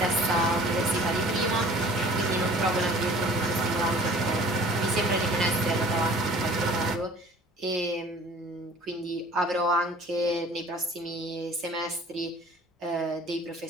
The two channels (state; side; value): normal; both; correlation 0.49